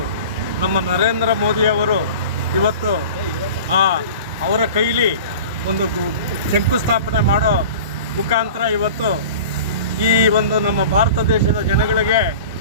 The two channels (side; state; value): both; inverted; correlation -0.39